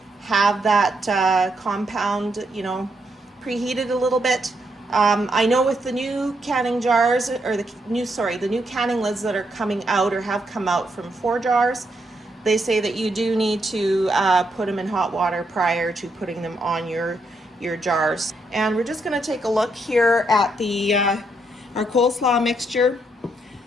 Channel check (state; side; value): normal; both; correlation 0.78